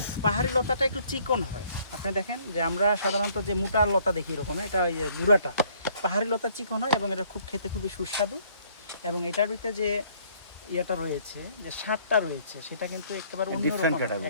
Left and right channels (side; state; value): both; inverted; correlation -0.62